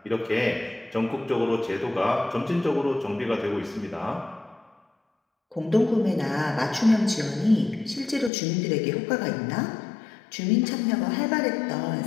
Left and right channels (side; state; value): right; drops out; at 8.3 s